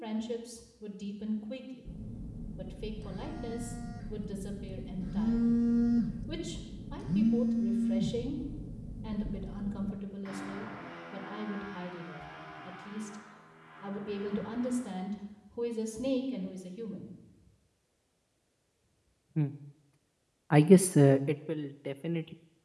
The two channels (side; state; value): both; identical; correlation 1.00